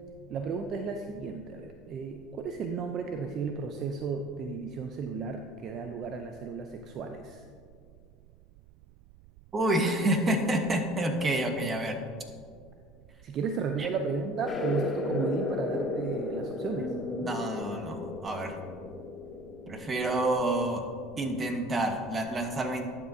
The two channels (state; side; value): noise; right; rumble, 24 dB below the sound